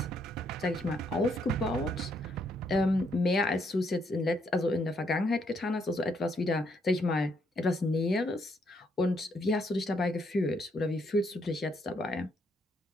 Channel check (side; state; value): both; normal; correlation 0.73